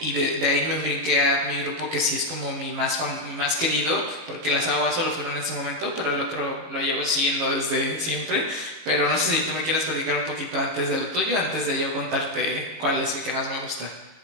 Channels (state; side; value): late; left; 18 ms